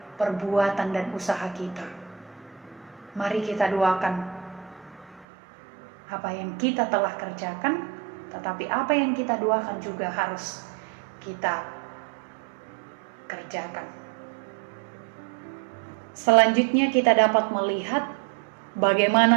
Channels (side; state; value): left; drops out; at 5.2 s